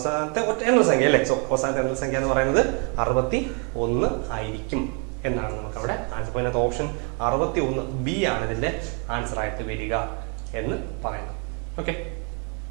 ഒറ്റ എണ്ണൽ സംഖ്യ അല്ലേ. സോ അവസാനത്തെ എണ്ണൽ സംഖ്യ എന്ന് പറയുന്നത് 61 ആയിരിക്കും എന്നാണ് നമുക്ക് അവിടെ ആൻസർ. അതിനകത്ത് ഓപ്ഷൻ 61 ബി ആണ് ഇതിന്റെ ആൻസർ ആയിട്ട് വരിക എന്ന് പറയുന്നത്. ഓക്കെ.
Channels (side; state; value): left; quieter; 35.6 dB